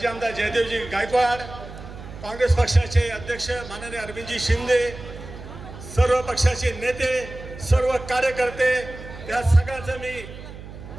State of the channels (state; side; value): noise; right; hum, 14 dB below the sound